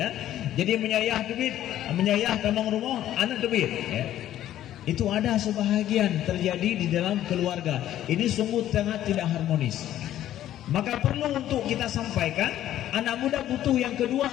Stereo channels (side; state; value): right; quieter; 12.4 dB